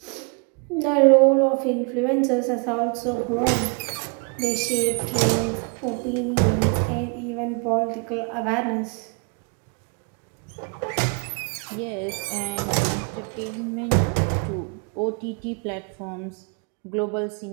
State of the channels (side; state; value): left; quieter; 35.7 dB